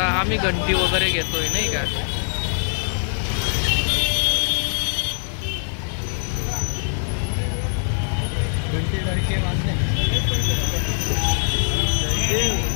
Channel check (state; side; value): silent; right; 64 dB below the other